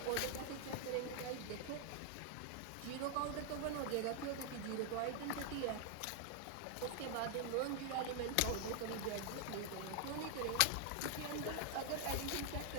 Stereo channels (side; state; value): both; different; correlation 0.00